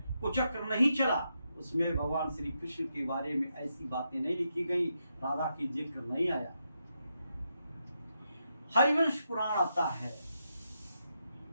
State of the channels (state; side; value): inverted; both; correlation -0.83